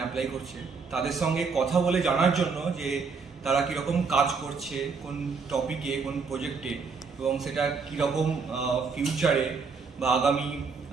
অ্যাপ্লাই করছে তাদের সঙ্গে কথা বলে জানার জন্য যে তারা কীরকম কাজ করছে কোন টপিকে কোন প্রজেক্টে এবং সেটা কীরকম ফিউচারে বা আগামী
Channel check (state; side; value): quieter; left; 5.0 dB